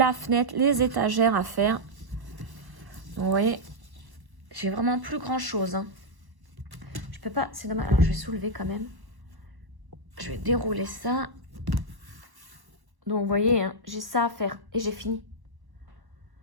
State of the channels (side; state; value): left; late; 1.1 ms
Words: fenêtre, les étagères à faire. Donc vous voyez, j'ai vraiment plus grand chose. Hein. Je peux pas, c'est dommage. Alors je vais soulever quand même. Je vais dérouler ça. Donc, vous voyez, hein, j'ai ça à faire. Et j'ai fini.